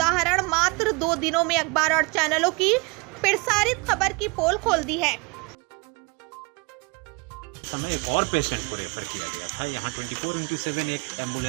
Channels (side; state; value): left; quieter; 28.7 dB